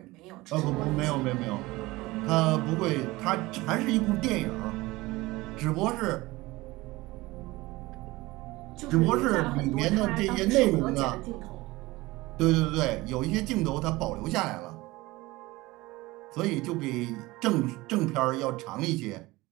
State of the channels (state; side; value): quieter; left; 20.4 dB